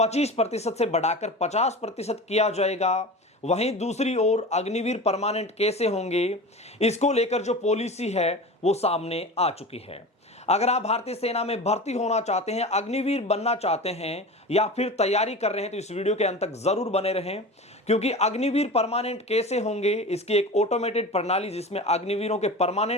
से बढ़ाकर 50% किया जाएगा, वहीं दूसरी ओर अग्निवीर परमानेंट कैसे होंगे, इसको लेकर जो पॉलिसी है वो सामने आ चुकी है। अगर आप भारतीय सेना में भर्ती होना चाहते हैं, अग्निवीर बनना चाहते हैं या फिर तैयारी कर रहे हैं तो इस वीडियो के अंत तक जरूर बने रहें, क्योंकि अग्निवीर परमानेंट कैसे होंगे इसकी एक ऑटोमेटेड प्रणाली जिसमें अग्निवीरों के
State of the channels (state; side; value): normal; both; correlation 0.32